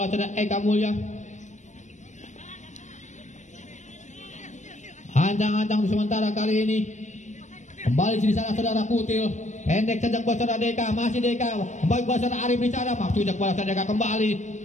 oleh saudara Eka Mulya. Ancang-ancang sementara kali ini. Kembali di sana saudara Kutil, pendek saja buat saudara Deka, masih Deka kembali buat saudara Arif di sana, maksudnya buat saudara Deka kembali,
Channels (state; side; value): late; right; 0.35 ms